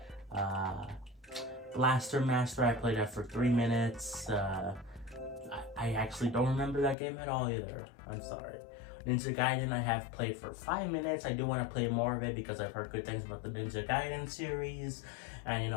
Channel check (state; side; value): drops out; right; at 7.0 s